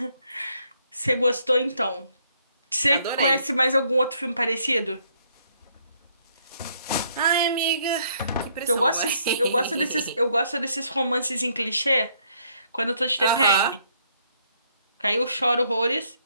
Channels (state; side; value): inverted; both; correlation -0.69